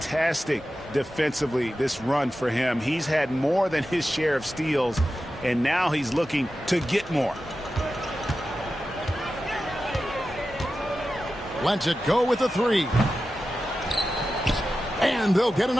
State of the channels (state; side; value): normal; both; correlation 0.92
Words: defensively, this run for him. He's had more than his share of steals, and now he's looking to get more. Lets it go with a three. And they'll get